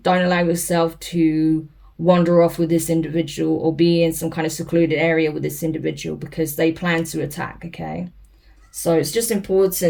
allow yourself to wander off with this individual or be in some kind of secluded area with this individual because they plan to attack, okay? So it's just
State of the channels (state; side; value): identical; both; correlation 1.00